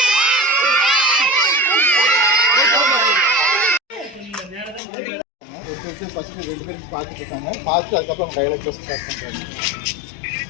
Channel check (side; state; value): right; drops out; at 4.8 s